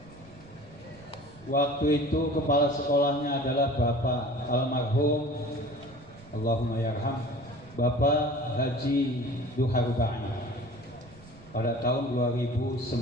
waktu itu kepala sekolahnya adalah Bapak almarhum, Allahumma yarham, Bapak Haji Duharubani pada tahun 2009.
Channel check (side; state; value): right; noise; rumble, 23 dB below the sound